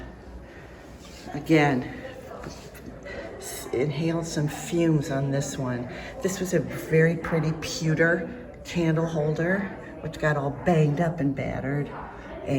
Again, inhaled some fumes on this one. This was a very pretty pewter candle holder, which got all banged up and battered.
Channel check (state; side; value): identical; both; correlation 1.00